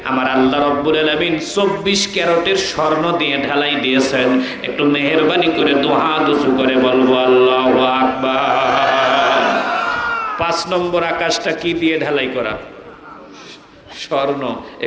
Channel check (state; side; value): identical; both; correlation 1.00